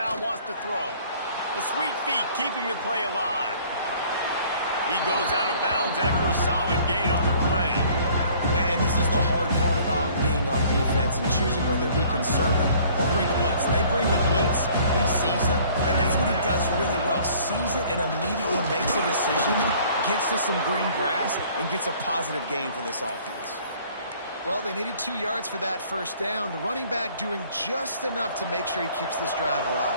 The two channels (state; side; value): inverted; both; correlation -0.55